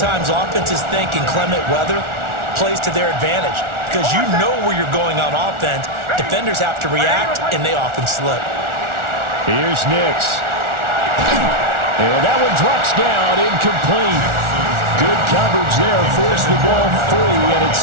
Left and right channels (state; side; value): late; left; 1.4 ms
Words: offenses think inclement weather plays to their advantage because you know where you're going on offense. Defenders have to react, and they often slip. Here's Nix. And that one drops down, incomplete. Good coverage there, forced the ball free, and it's